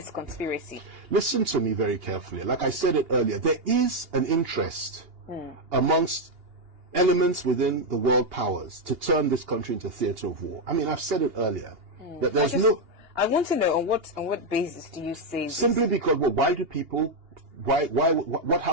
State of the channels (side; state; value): left; late; 2.8 ms